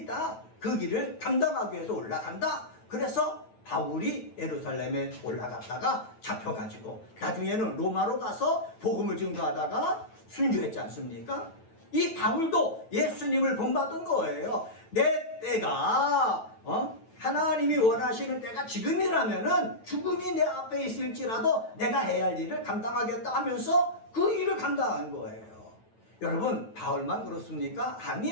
있다. 그 길을 감당하기 위해서 올라간다. 그래서 바울이 예루살렘에 올라갔다가 잡혀가지고 나중에는 로마로 가서 복음을 증거하다가 순교했지 않습니까? 이 바울도 예수님을 본받은 거예요. 내 때가 하나님이 원하시는 때가 지금이라면은 죽음이 내 앞에 있을지라도 내가 해야 할 일을 감당하겠다 하면서 그 일을 감당한 거예요. 여러분, 바울만 그렇습니까?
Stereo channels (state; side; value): late; right; 9.2 ms